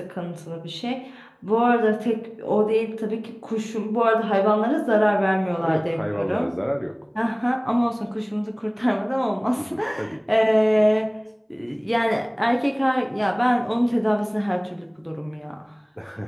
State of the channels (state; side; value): identical; both; correlation 1.00